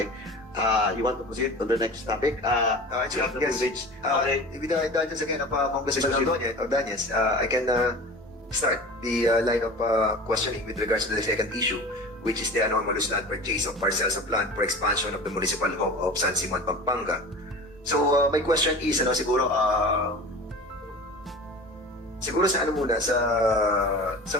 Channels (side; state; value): both; normal; correlation 0.36